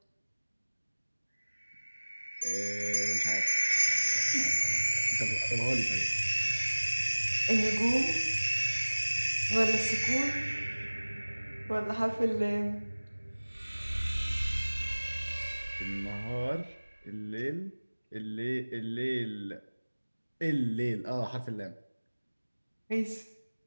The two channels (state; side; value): inverted; both; correlation -1.00